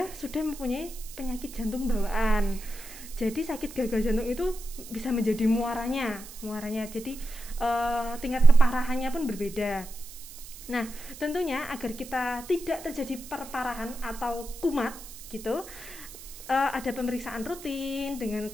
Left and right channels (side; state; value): right; noise; hiss, 15 dB below the sound